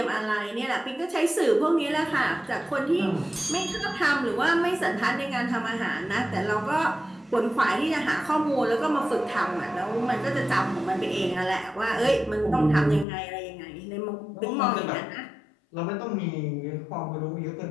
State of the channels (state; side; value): drops out; right; at 13.1 s